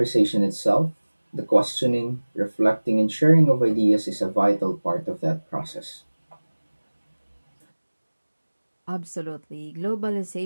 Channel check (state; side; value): inverted; both; correlation -1.00